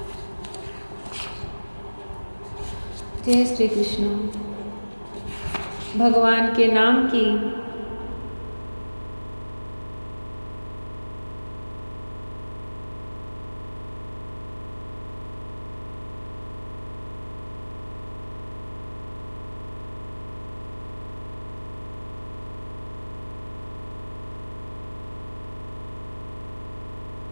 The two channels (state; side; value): inverted; both; correlation -1.00